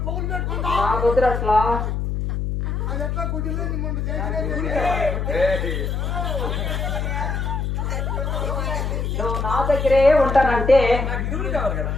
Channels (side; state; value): left; noise; hum, 1 dB below the sound